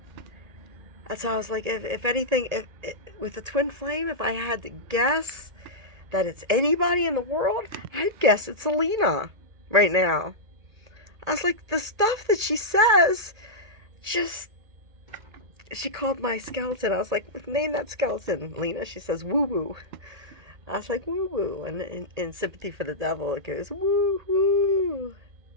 That's how I was like, if anything, with the twin flame, if I had to guess that it's anybody in the world, I'd guess it's Alina right now. I was like, the stuff that she says, she called my skeleton. I was like, name that skeleton, Lena. She says, woo woo. I was like, woo woo. And in Sympathy for the Devil, it goes, woo woo,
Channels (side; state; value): left; late; 1.8 ms